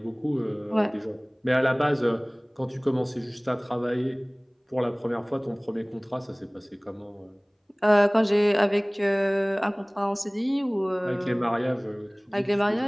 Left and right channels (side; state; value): both; identical; correlation 1.00